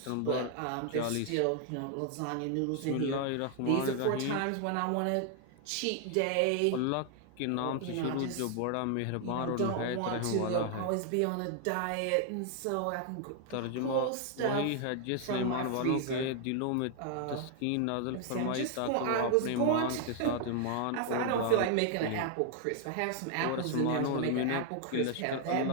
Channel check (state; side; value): different; both; correlation 0.00